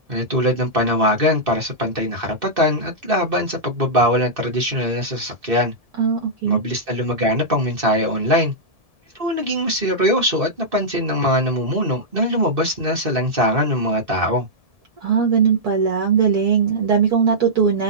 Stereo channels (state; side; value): late; left; 1.7 ms